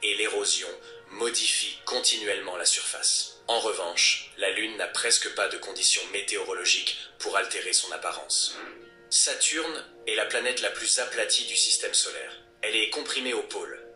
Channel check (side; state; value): both; identical; correlation 1.00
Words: et l'érosion modifient continuellement la surface. En revanche, la Lune n'a presque pas de conditions météorologiques pour altérer son apparence. Saturne est la planète la plus aplatie du système solaire. Elle est comprimée au pôle,